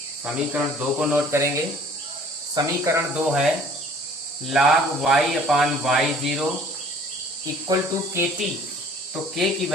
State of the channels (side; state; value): both; normal; correlation 0.53